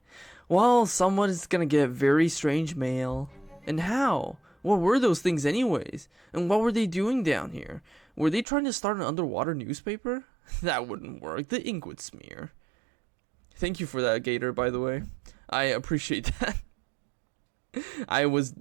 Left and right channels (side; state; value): left; drops out; at 8.5 s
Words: Well, someone's gonna get very strange mail. And how? What were those things anyways? And what were they doing down here? Were they trying to start an underwater newspaper? That wouldn't work. The ink would smear. Thank you for that, Gator, by the way. I appreciate that. I was